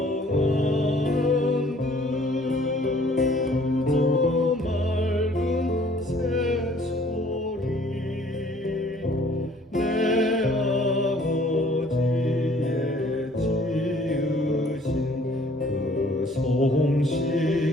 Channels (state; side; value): normal; both; correlation 0.57